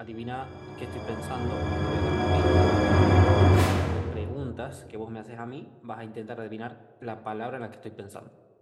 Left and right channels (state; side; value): identical; both; correlation 1.00